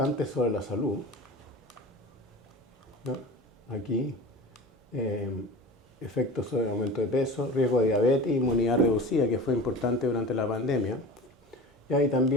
sobre la salud, ¿no? Aquí, efectos sobre el aumento de peso, riesgo de diabetes, inmunidad reducida, que fue importante durante la pandemia. Y ahí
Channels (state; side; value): normal; both; correlation 0.35